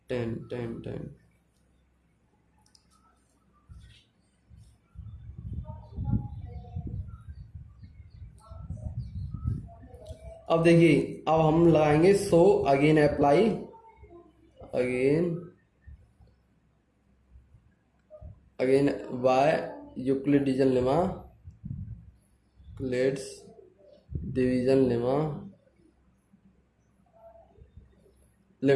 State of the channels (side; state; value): both; identical; correlation 1.00